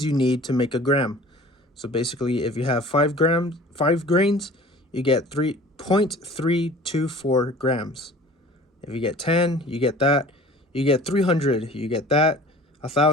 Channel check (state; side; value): normal; both; correlation 0.46